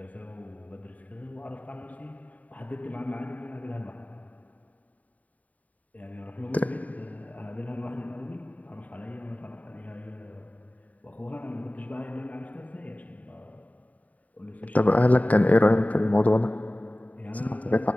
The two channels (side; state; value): right; late; 0.071 ms